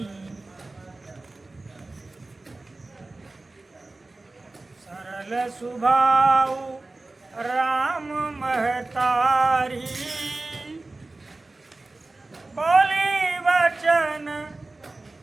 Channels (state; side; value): quieter; left; 3.1 dB